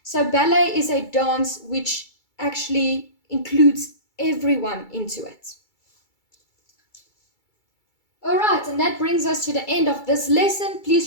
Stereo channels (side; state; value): right; late; 2.3 ms